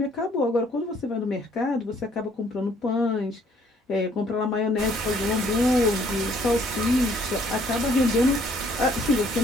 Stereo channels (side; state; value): both; normal; correlation 0.62